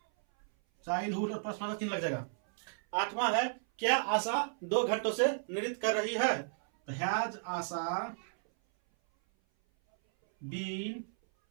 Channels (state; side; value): silent; left; 55 dB below the other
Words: और प्रश्नवाचक चिन्ह लग जाएगा। 8वां है, क्या आशा 2 घंटों से नृत्य कर रही है, तो हैज आशा बीन